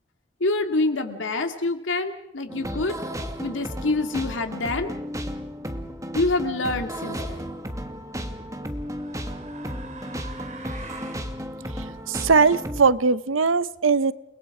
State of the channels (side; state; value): both; normal; correlation -0.14